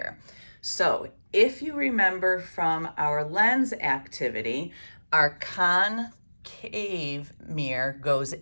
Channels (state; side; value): inverted; both; correlation -1.00